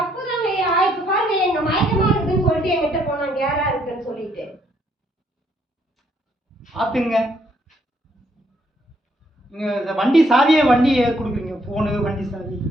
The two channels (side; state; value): both; normal; correlation 0.70